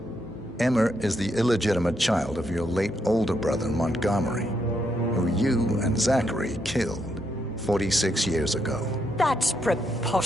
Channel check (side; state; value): both; normal; correlation 0.78